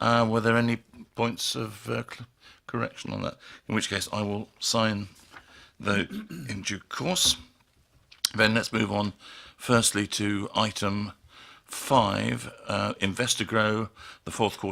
Were there any points of correction on that? In which case I will sign those in due course. Then let's move on firstly to item 5, InvestorGrow, the fourth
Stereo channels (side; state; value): both; identical; correlation 1.00